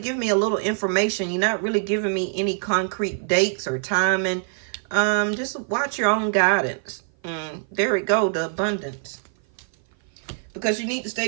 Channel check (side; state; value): left; silent; 55 dB below the other